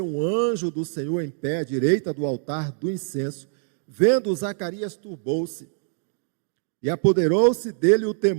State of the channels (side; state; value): left; silent; digital silence